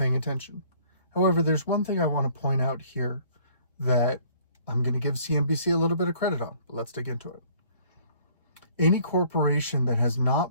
attention. However, there's one thing I want to point out here that I'm going to give CNBC a little bit of credit on, but let's dig into it. Any corporation that has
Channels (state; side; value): inverted; both; correlation -0.57